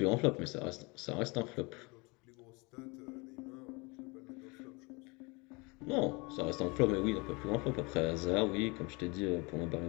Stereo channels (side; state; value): right; quieter; 27.7 dB